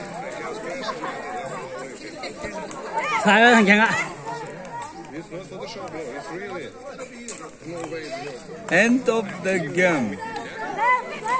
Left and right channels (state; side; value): identical; both; correlation 1.00